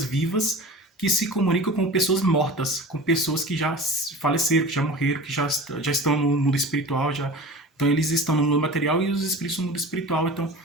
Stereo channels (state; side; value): normal; both; correlation 0.37